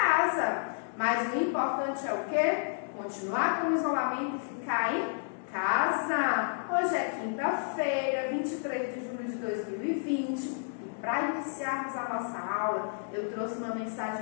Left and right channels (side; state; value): right; silent; digital silence